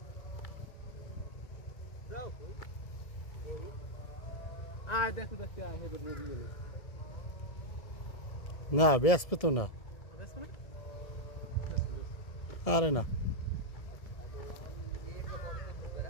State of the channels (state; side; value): late; right; 1.7 ms